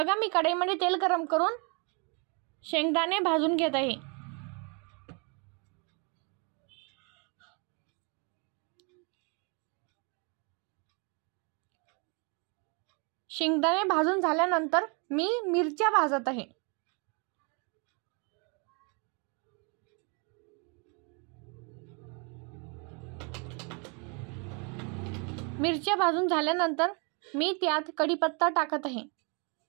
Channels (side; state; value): left; quieter; 34.6 dB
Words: मी कढईमध्ये तेल गरम करून शेंगदाणे भाजून घेत आहे। शेंगदाणे भाजून झाल्यानंतर मी मिरच्या भाजत आहे। मिरच्या भाजून झाल्यानंतर मी त्यात कढीपत्ता टाकत आहे।